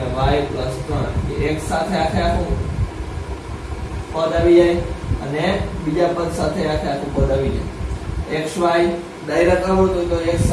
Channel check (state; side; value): identical; both; correlation 1.00